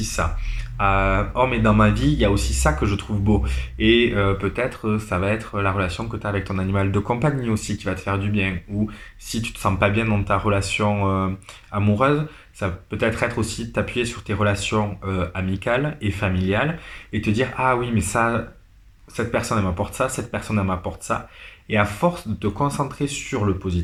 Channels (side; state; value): both; identical; correlation 1.00